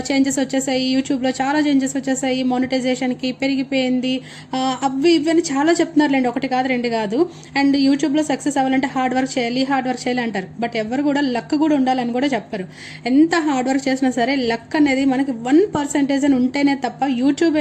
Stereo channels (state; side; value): identical; both; correlation 1.00